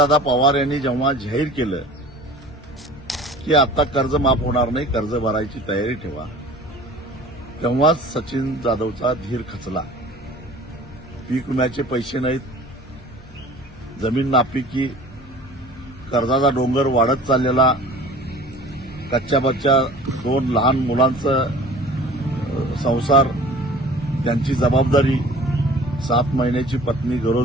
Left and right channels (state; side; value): normal; both; correlation 0.45